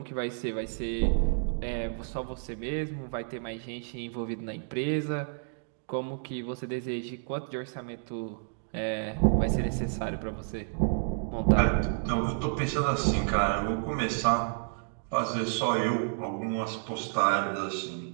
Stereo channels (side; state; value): left; silent; digital silence